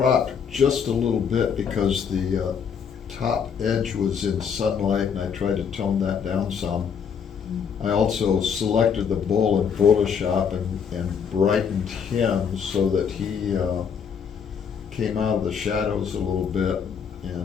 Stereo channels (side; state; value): right; quieter; 6.9 dB